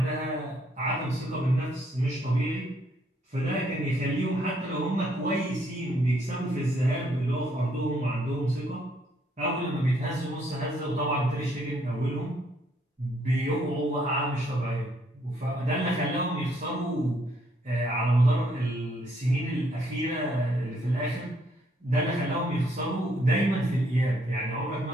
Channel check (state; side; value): normal; both; correlation 0.69